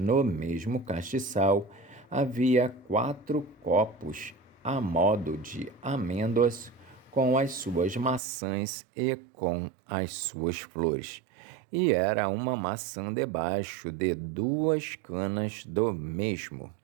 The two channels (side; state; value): left; drops out; at 8.2 s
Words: mesmo castiçal havia 4 copos, a modo de amêndoas, com as suas maçãs e com as suas flores. E era uma maçã debaixo de 2 canas do mesmo,